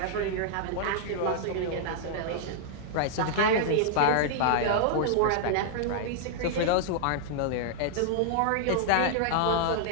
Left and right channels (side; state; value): both; different; correlation -0.01